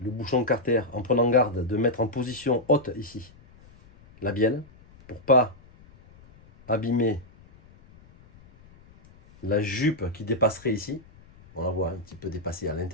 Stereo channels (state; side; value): noise; left; rumble, 25 dB below the sound